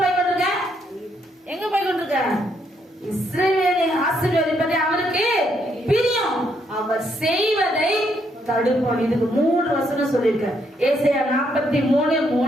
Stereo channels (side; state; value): both; normal; correlation 0.74